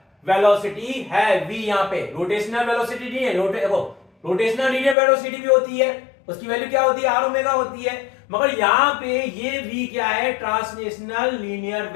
velocity है v यहां पे। रोटेशनल वेलोसिटी नहीं है। रोटेशनल लीनियर वेलोसिटी भी होती है, उसकी वैल्यू क्या होती है? आर ओमेगा होती है। मगर यहां पे ये v क्या है? ट्रांसलेशनल लीनियर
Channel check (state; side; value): drops out; right; at 5.0 s